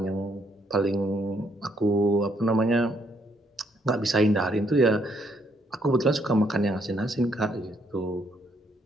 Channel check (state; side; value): normal; both; correlation 0.71